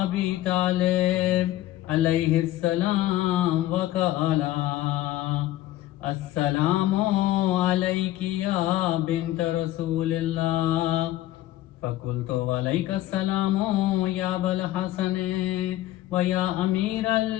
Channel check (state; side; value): quieter; right; 15.0 dB